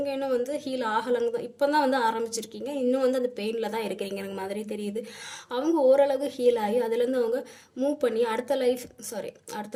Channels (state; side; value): identical; both; correlation 1.00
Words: இன்னும் வந்து ஹீல் ஆகலைங்க தான், இப்போ தான் வந்து ஆரம்பிச்சிருக்கீங்க. இன்னும் வந்து அந்த பெயினில் தான் இருக்கிறீங்க எனக்கு மாதிரி தெரியுது. அவங்க ஓரளவு ஹீல் ஆகி அதுலேருந்து அவங்க மூவ் பண்ணி அடுத்த